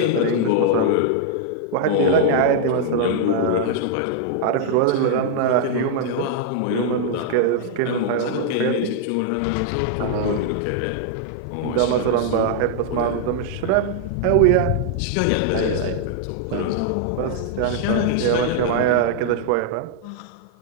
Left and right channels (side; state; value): both; different; correlation -0.01